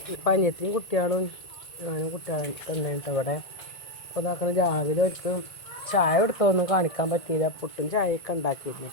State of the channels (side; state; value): right; late; 1.8 ms